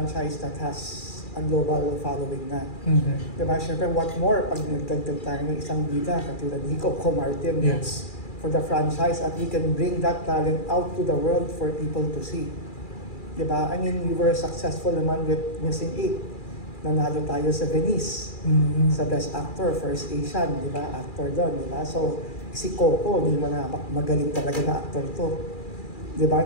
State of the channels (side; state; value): right; late; 2.4 ms